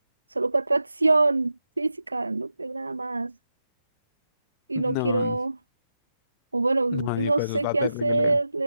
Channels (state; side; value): inverted; both; correlation -0.88